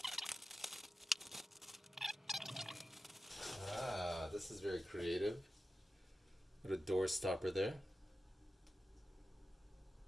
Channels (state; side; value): normal; both; correlation 0.92